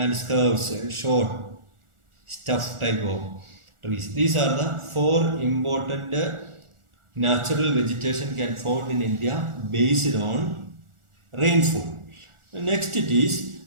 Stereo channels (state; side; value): late; left; 1.4 ms